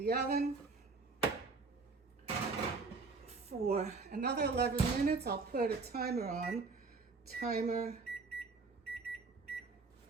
oven for another 11 minutes. I'll put a timer on. Timer.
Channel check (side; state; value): left; quieter; 4.2 dB